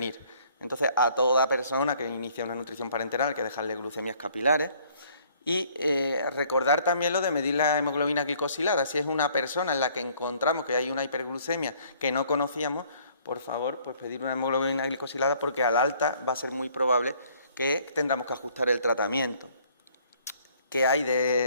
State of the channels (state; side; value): inverted; both; correlation -0.60